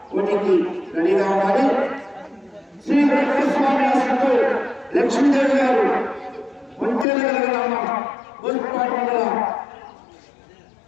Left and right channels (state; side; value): drops out; right; at 7.1 s